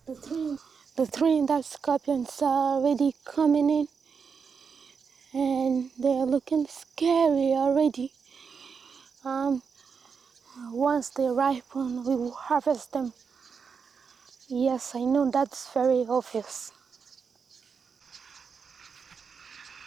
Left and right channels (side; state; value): left; quieter; 5.9 dB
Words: The Trinidad scorpions are already coming in, and they're looking scary already. Once they ripen, we will harvest them. Yes, I know that's very obvious.